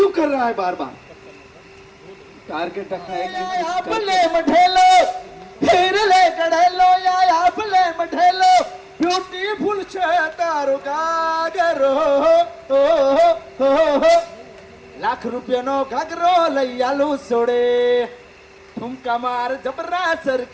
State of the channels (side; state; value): both; identical; correlation 1.00